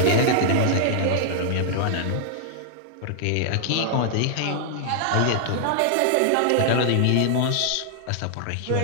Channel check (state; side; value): different; both; correlation -0.01